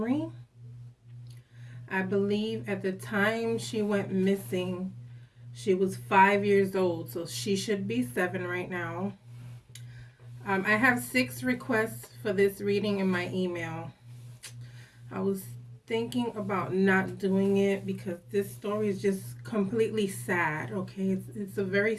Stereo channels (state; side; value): identical; both; correlation 1.00